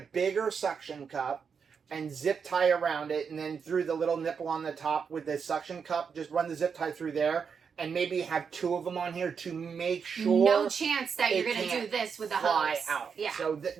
bigger suction cup and zip tie around it, and then through the little nipple on the top with the suction cup, just run the zip tie through there, and maybe have 2 of them on here to make sure. No chance that you're going to do this with the fly hose. out. Yeah. So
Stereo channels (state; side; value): quieter; left; 6.3 dB